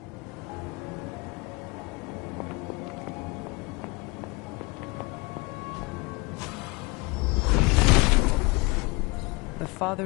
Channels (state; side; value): quieter; right; 25.9 dB